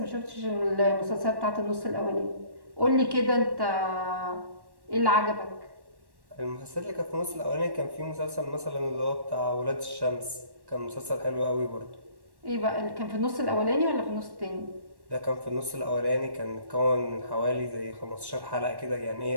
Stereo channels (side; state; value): left; late; 1.1 ms